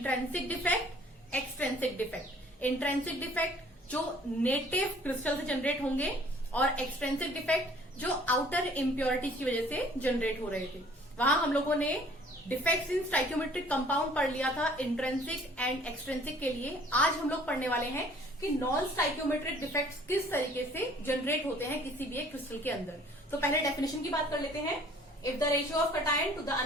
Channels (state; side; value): normal; both; correlation 0.55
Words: defect, extrinsic defect. Intrinsic defect जो नेटिव क्रिस्टल से जनरेट होंगे और एक्सट्रेंसिक डिफेक्ट जो आउटर इम्प्योरिटीज की वजह से जनरेट हो रहे थे। वहां हम लोगों ने डिफेक्ट्स इन स्टाइक्योमेट्रिक कंपाउंड पढ़ लिया था इंट्रेंसिक एंड एक्सट्रेंसिक के लिए। आज हम लोग पढ़ने वाले हैं कि नॉन स्टाइक्योमेट्रिक डिफेक्ट्स किस तरीके से जनरेट होते हैं किसी भी एक क्रिस्टल के अंदर। तो पहले डेफिनेशन की बात कर लेते हैं। If the ratio of cation to the